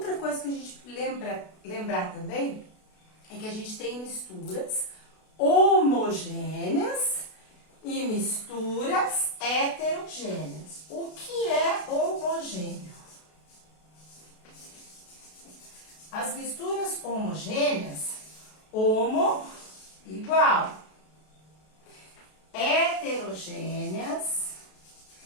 coisa que a gente lembrar também é que a gente tem misturas homogêneas e misturas heterogêneas. O que é homogêneo? As misturas homogêneas, homo, igual. Heterogêneas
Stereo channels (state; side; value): late; right; 32 ms